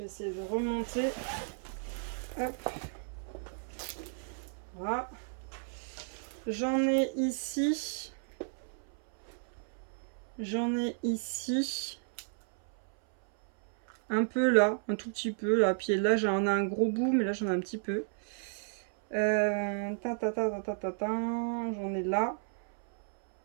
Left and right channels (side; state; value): left; silent; 56 dB below the other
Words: essayer de remonter. Hop. Voilà. J'en ai ici. J'en ai ici. Un peu là, un tout petit peu là. Puis là, j'en ai un gros bout, mais là, j'en ai un petit peu. J'en ai là.